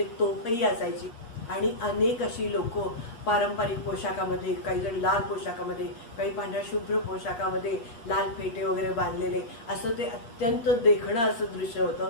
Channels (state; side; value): late; right; 8.3 ms